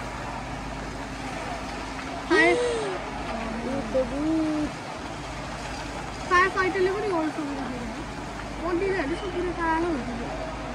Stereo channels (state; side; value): identical; both; correlation 1.00